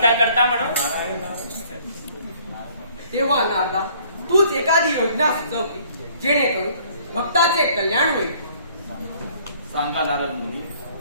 करता म्हणून. तेव्हा नारदा, तूच एखादी योजना सुचव की जेणेकरून भक्ताचे कल्याण होईल. सांगा नारद मुनी,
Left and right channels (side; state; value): both; inverted; correlation -0.58